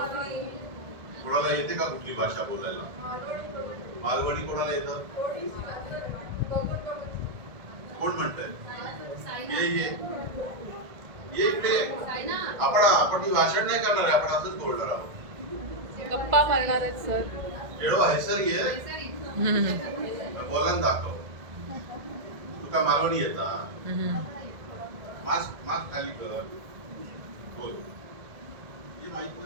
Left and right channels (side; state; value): left; late; 1.7 ms